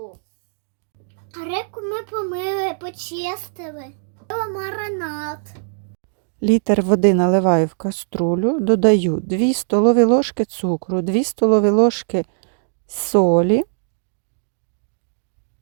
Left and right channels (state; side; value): silent; left; digital silence